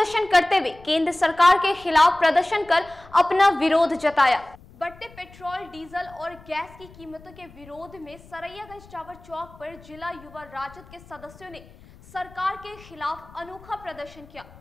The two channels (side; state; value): left; noise; rumble, 22 dB below the sound